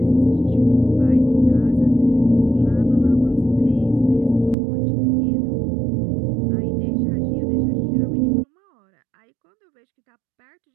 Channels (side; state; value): left; drops out; at 4.5 s